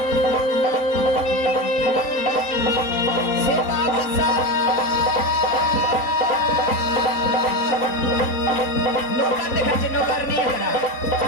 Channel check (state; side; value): late; right; 3.8 ms